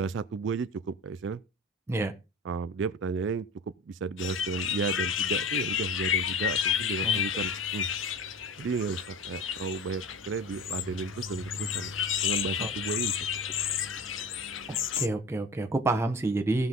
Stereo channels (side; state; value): both; normal; correlation 0.35